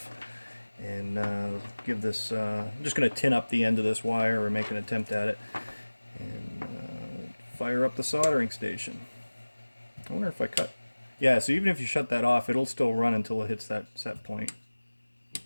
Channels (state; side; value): inverted; both; correlation -1.00